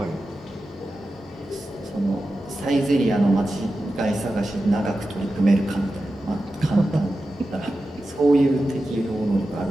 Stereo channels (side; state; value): both; normal; correlation 0.92